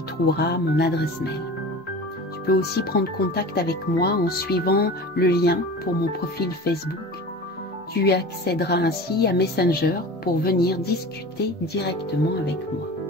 trouveras mon adresse mail. Tu peux aussi prendre contact avec moi en suivant le lien pour mon profil Facebook. Tu accéderas ainsi à Messenger pour venir discuter directement avec moi.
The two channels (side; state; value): both; normal; correlation 0.36